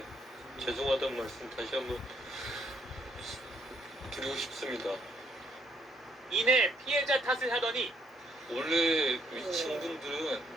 죄송하다는 말씀 다시 한번 드리고 싶습니다. 이내 피해자 탓을 하더니 원래 위층 분들은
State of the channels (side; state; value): both; normal; correlation 0.69